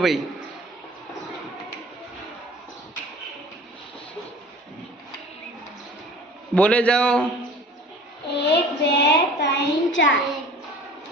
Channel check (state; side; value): normal; both; correlation 0.44